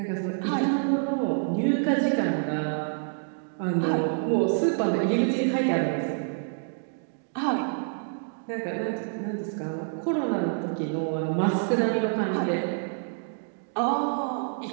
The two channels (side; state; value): left; silent; digital silence